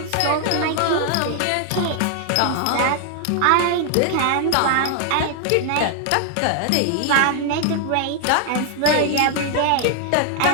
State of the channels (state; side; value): different; both; correlation 0.00